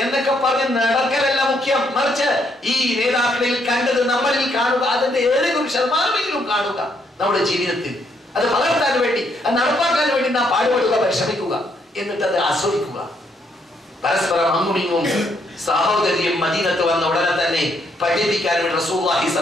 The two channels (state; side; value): normal; both; correlation 0.73